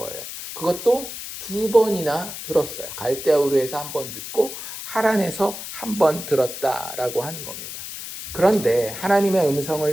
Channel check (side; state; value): left; noise; hiss, 9 dB below the sound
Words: 그것도 2번이나 들었어요. 갈대아우르에서 한 번 듣고 하란에서 한 번 들었다라고 하는 겁니다. 그런데 하나님의